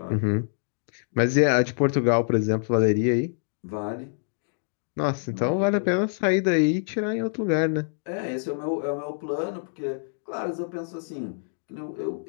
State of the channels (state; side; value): silent; right; digital silence